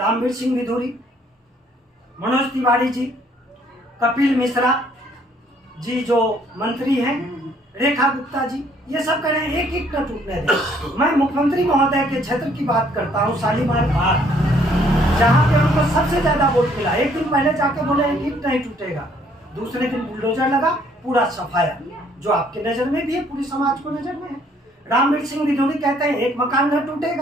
सिंह विधूरी, मनोज तिवारी जी, कपिल मिश्रा जी जो मंत्री हैं, रेखा गुप्ता जी, ये सब कह रहे हैं एक ईंट न टूटने दें। मैं मुख्यमंत्री महोदय के क्षेत्र की बात करता हूँ, शालीमार बाग, जहाँ पे उनको सबसे ज्यादा वोट मिला। एक दिन पहले जाके बोले एक ईंट नहीं टूटेगा, दूसरे दिन बुलडोजर लगा, पूरा सफाया, जो आपके नजर में भी है, पूरी समाज को नजर में है। रामवीर सिंह विधूरी कहते हैं एक मकान न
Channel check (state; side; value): normal; both; correlation 0.64